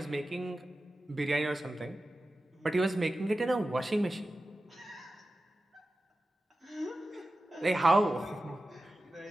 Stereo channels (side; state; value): both; normal; correlation 0.94